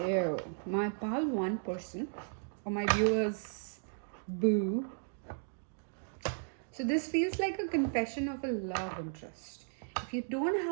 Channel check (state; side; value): silent; left; digital silence